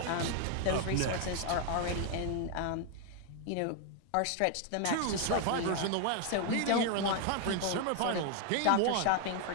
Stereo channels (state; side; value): different; both; correlation 0.00